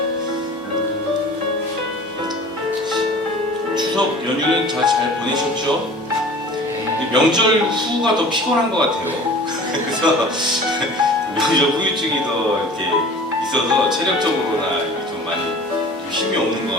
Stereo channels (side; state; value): both; normal; correlation 0.43